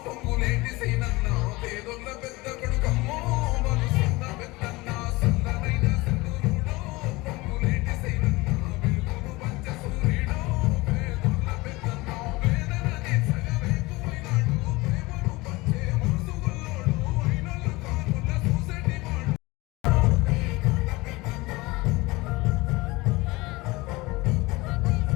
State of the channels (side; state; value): right; quieter; 22.1 dB